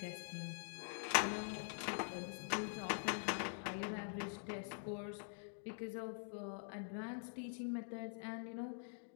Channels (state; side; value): silent; right; digital silence